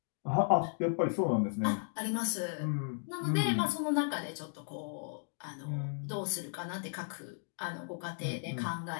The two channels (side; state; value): right; silent; digital silence